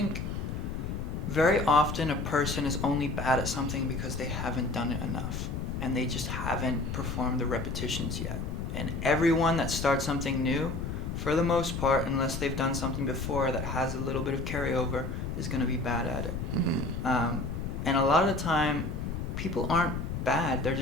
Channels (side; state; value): left; noise; rumble, 4 dB below the sound